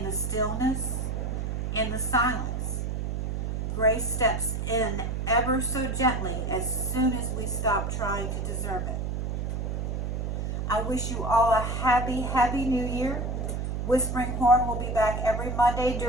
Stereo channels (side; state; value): right; noise; hum, 2 dB below the sound